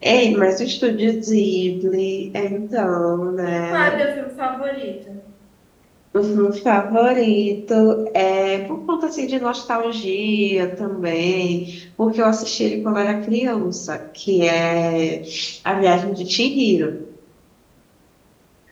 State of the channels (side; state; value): both; identical; correlation 1.00